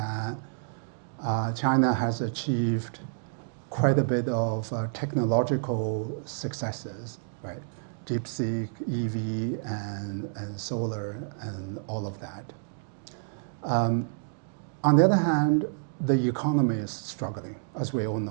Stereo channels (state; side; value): silent; left; digital silence